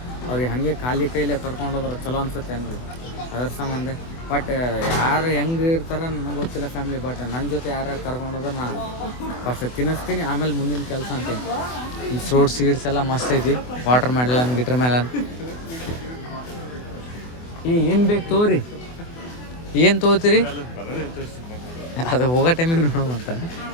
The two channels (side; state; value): right; late; 24 ms